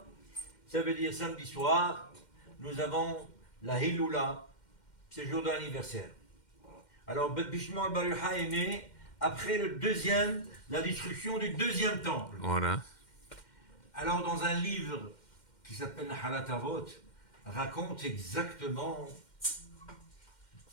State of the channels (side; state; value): right; late; 2.1 ms